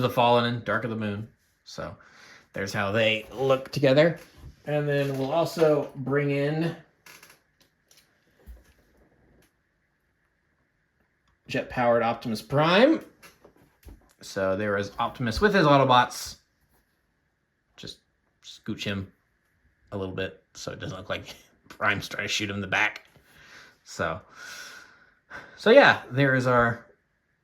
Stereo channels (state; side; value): identical; both; correlation 1.00